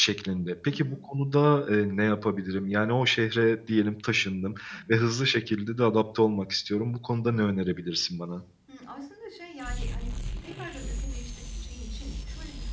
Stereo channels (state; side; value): identical; both; correlation 1.00